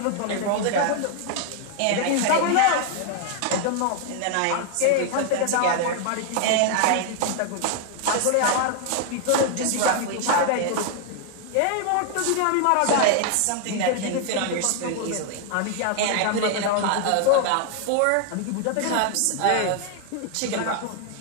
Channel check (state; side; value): different; both; correlation 0.00